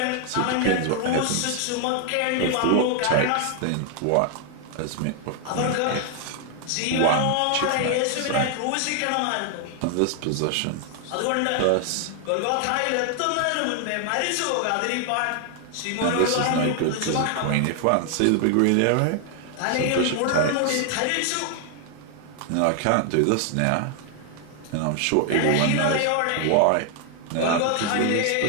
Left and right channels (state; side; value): different; both; correlation 0.00